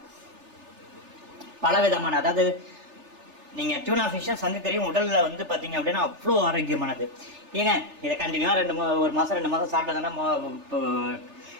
பல விதமான, அதாவது நீங்கள் டியூனா ஃபிஷ்ஷும் சங்குக்கறியும் உடலில் வந்து பார்த்தீங்க அப்படின்னா அவ்வளோ ஆரோக்கியமானது. ஏங்க இதை கண்டினியூவாக ஒரு மாதம் 2 மாதம் சாப்பிட்டதுன்னா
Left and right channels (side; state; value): left; late; 3.3 ms